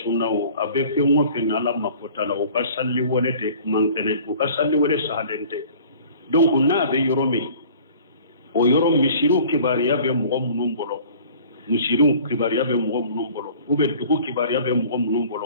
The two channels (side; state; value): both; inverted; correlation -0.48